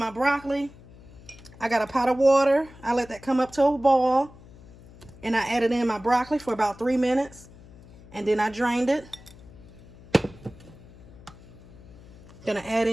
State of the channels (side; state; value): left; noise; hum, 21 dB below the sound